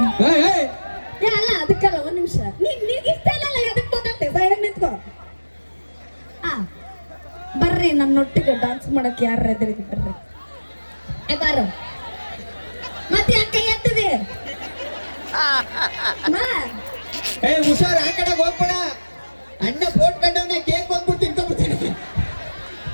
ಏಯ್, ಏಯ್. ಏ ಅಲ್ಲ ಅದಕ್ಕಲ್ಲ, ಒಂದ್ ನಿಮಿಷ. ನಿನ್ಗೆ ಇಷ್ಟ ಇಲ್ಲ, ಎದಕ್ ಮಾತಾಡ್ತೆ? ಸೈಡ್ ನಿಂತ್ಕೋ. ಬರ್ರಿ ನನ್ನೊಟ್ಟಿಗೆ ಡಾನ್ಸ್ ಮಾಡಕ್ ಯಾರ ಎದುರಿಗೆ ಬರ್ರಿ. ಏ ಬಾರು. ಮತ್ತೆ ಯಾಕೆ ಎತ್ತದೆ? ಏ ಹುಷಾರ್, ಆ ಕಡೆ ಹೋಗ್ಬೇಡ. ಅಣ್ಣ ಫೋನ್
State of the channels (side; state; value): both; inverted; correlation -1.00